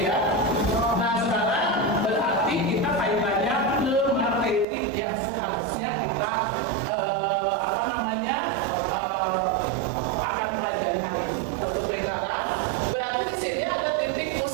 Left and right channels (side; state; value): left; drops out; at 4.7 s